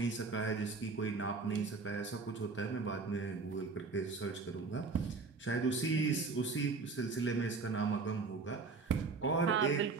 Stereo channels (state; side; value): quieter; left; 4.4 dB